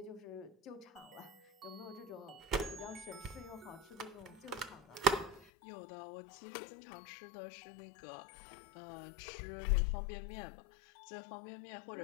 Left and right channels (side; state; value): right; drops out; at 5.5 s